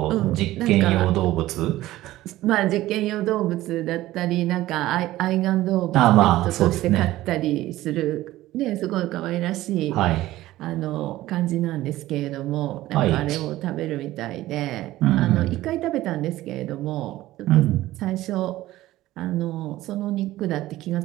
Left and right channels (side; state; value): left; quieter; 16.0 dB